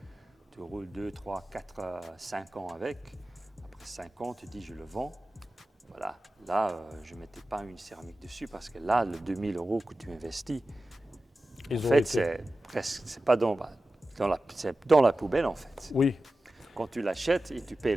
tu roules 2, 3, 4, 5 ans avec. Après 5 ans, tu dis je le vends. Voilà. Là, je ne mettais pas une céramique dessus parce que là, le 2000 € que tu investis, en fait, c'est pas c'est dans la poubelle en fait. Oui, Quand tu l'achètes et tu payes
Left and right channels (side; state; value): both; normal; correlation 0.94